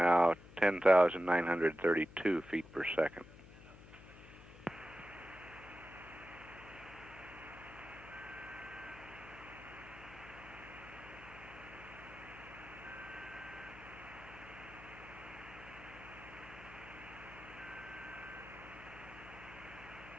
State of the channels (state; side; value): noise; left; hum, 18 dB below the sound